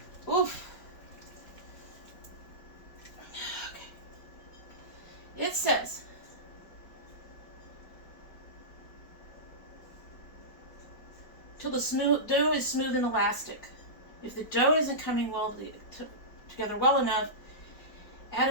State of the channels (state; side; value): late; right; 4.9 ms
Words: Oof. Okay. It says, till the dough is smooth and elastic. If the dough isn't coming together well enough, add